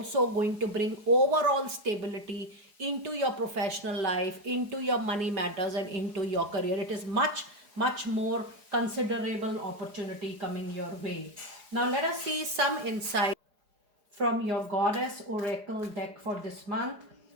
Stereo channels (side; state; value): left; late; 4.9 ms